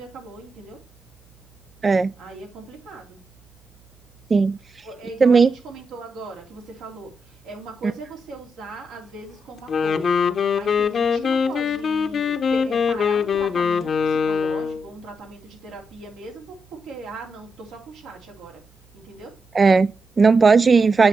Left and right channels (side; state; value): both; normal; correlation 0.84